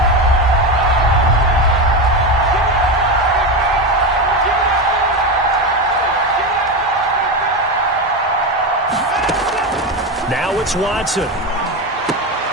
Now it's Watson.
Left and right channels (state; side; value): normal; both; correlation 0.16